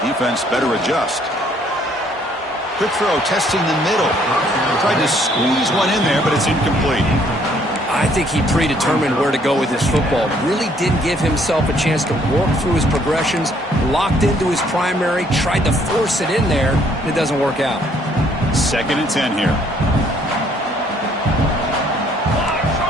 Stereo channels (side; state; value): both; normal; correlation 0.64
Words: Defense better adjust. Quick throw, testing the middle. Tried to squeeze one in there, but it's incomplete. I think he predetermined where to go with his football. Really didn't give himself a chance to work through his progressions. Locked into his primary, tried to force it in there, and it doesn't work out. 2nd and 10 here.